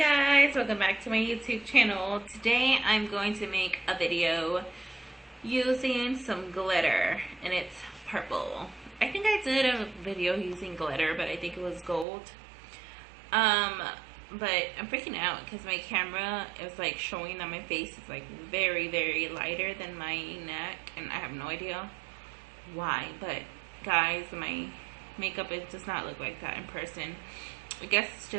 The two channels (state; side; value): drops out; left; at 12.1 s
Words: welcome back to my YouTube channel. Today I'm going to make a video using some glitter and it's purple. I think I did a video using glitter, but I think it was gold. But I'm freaking out because my camera is like showing that my face is like very lighter than my neck, and I have no idea why. But guys, my makeup, it does not look like that in person. I guess it's